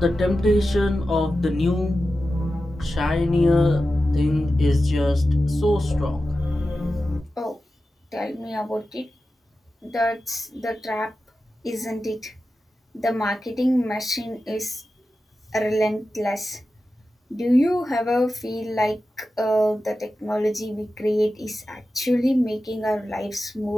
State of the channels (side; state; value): both; normal; correlation 0.93